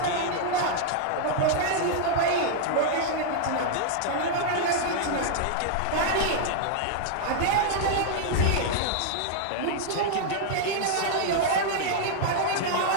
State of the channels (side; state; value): both; different; correlation -0.01